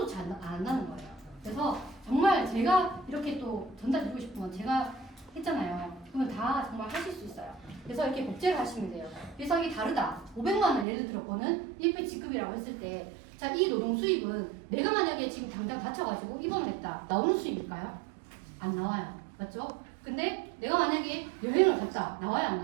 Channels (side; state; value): left; drops out; at 10.9 s